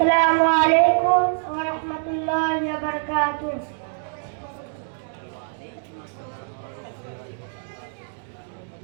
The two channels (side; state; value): left; silent; digital silence